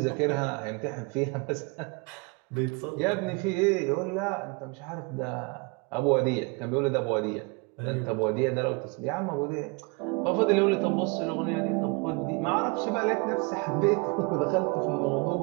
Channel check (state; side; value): quieter; left; 30.2 dB